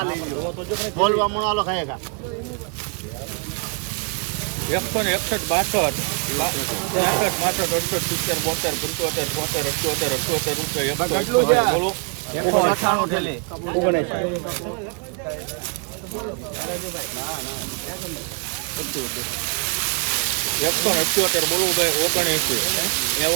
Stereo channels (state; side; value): quieter; left; 39.1 dB